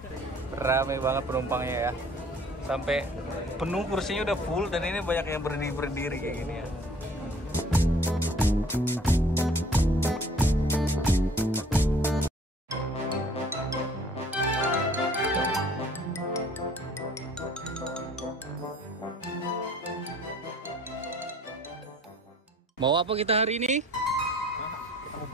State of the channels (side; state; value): both; normal; correlation 0.54